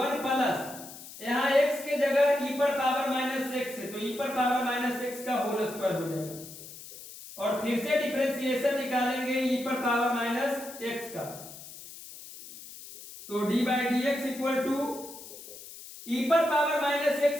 प्लस, यहाँ x के जगह e पर पावर माइनस x है तो e पर पावर माइनस x का होल स्क्वायर हो जाएगा, और फिर से डिफरेंशिएशन निकालेंगे e पर पावर माइनस x का, तो dy dx equal to e पर पावर माइनस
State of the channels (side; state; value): left; noise; hiss, 15 dB below the sound